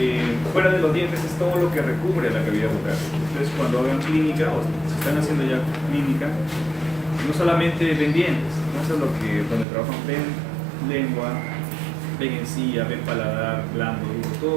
fuera de los dientes es todo lo que recubre la cavidad bucal. Entonces, cuando hagan clínica, o se están haciendo ya clínica, no solamente ven dientes, ¿no? Eso es lo que, donde trabajan, ven lengua, ven encía, ven paladar, blando, duro,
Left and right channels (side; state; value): left; drops out; at 9.7 s